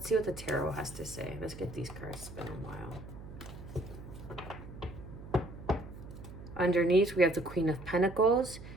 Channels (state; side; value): noise; right; hum, 13 dB below the sound